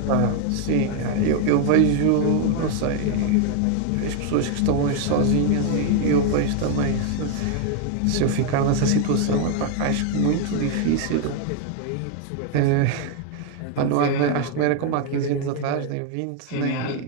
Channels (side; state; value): both; different; correlation 0.01